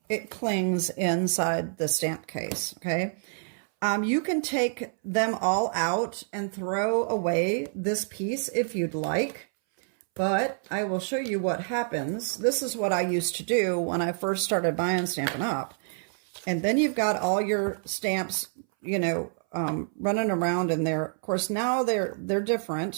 it clings inside the stamp case, okay? You can take them all out and throw away this piece if you'd like, but I will show you what happens. This is what I used to do when I first started buying Stampin' Up. And then you've got all your stamps, you know, running around in there. Of course, now they're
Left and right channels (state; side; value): silent; left; 60 dB below the other